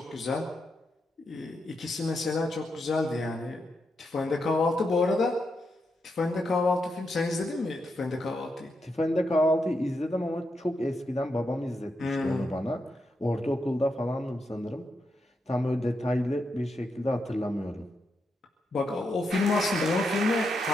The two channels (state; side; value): normal; both; correlation 0.84